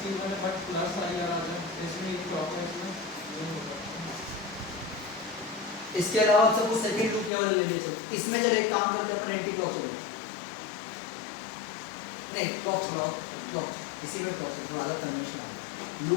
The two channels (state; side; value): drops out; right; at 7.3 s